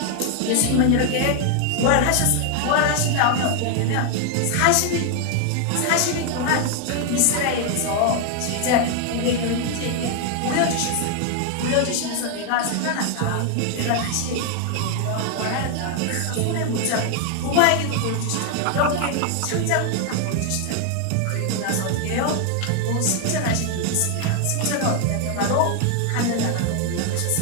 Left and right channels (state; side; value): different; both; correlation 0.00